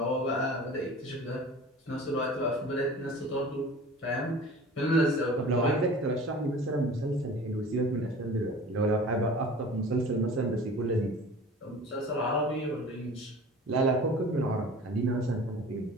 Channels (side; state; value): both; normal; correlation 0.42